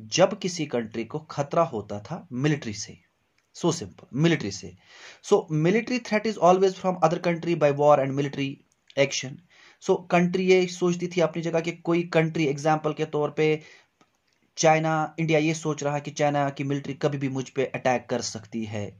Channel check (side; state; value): both; identical; correlation 1.00